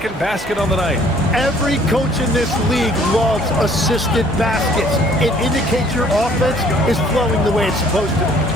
basket on the night. Every coach in this league loves assisted baskets. It indicates your offense is flowing the way it's supposed to.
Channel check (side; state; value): both; normal; correlation 0.58